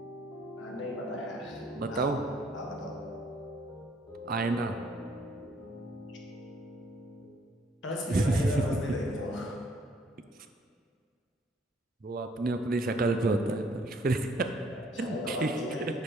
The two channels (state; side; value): normal; both; correlation 0.64